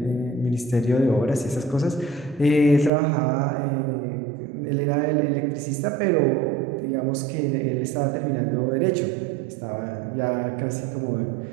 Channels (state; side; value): drops out; left; at 2.9 s